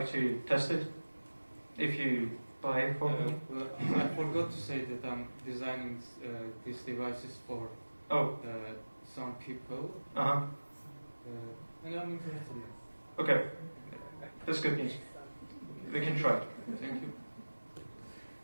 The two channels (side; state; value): both; inverted; correlation -1.00